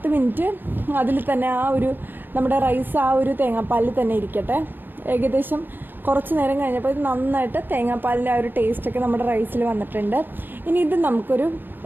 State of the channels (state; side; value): late; left; 0.094 ms